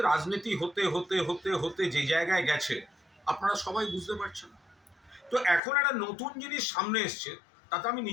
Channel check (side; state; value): right; drops out; at 5.6 s